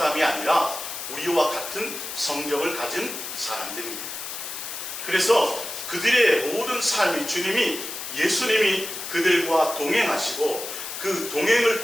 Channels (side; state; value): left; noise; hiss, 7 dB below the sound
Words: 아니라 우리와 같은 성정을 가진 사람들입니다. 그래서 그들의 모든 삶이 예수님이 그들과 동행하시고 그 동행을